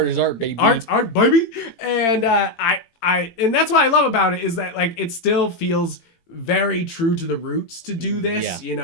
is art, baby. Art's art, baby. And and that's what I love about it, is that like it still feels very true to the roots to do this. You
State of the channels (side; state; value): right; late; 18 ms